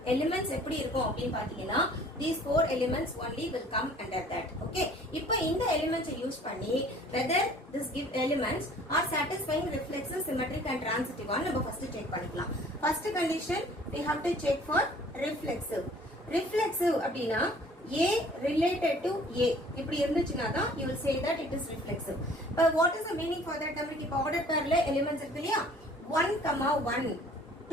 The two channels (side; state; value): both; normal; correlation 0.52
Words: elements எப்படி இருக்கும் அப்படின்னு பாத்தீங்கன்னா, these 4 elements only will come under that. Okay, இப்போ இந்த elements யூஸ் பண்ணி whether this give elements are satisfying reflexive, symmetric and transitive ஆன்னு நம்ம first check பண்ணிக்கலாம். First condition we have to check for reflexive. Reflexive அப்படின்னா A related to A. இப்படி இருந்துச்சுனா தான் you will say that it is reflexive. But what is the meaning for that? நமக்கு இப்போ ordered pairல elements இருக்கு இல்லையா, 1, 1,